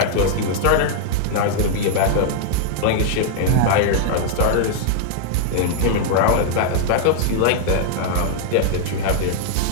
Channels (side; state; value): both; different; correlation -0.01